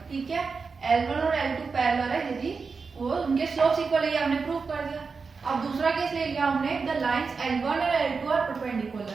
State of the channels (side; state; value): left; quieter; 4.9 dB